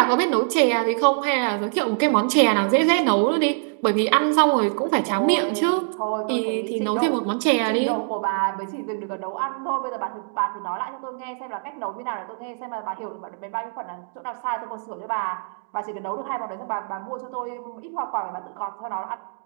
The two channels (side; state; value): left; silent; digital silence